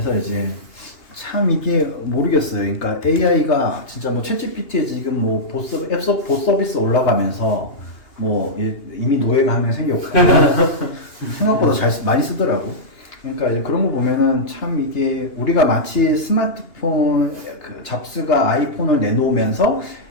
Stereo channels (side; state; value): right; late; 2.8 ms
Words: 이제 참 이게 모르겠어요. 그러니까 AI가 진짜 뭐 챗GPT에 지금 뭐 봇 서비스 올라가면서 뭐 이미 노예가 한 명 생겼고 생각보다 많이 쓰더라고. 그러니까 이제 그런 거 보면은 참 이게 우리가 마치 스마트폰 그 잡스가 아이폰을 내놓으면서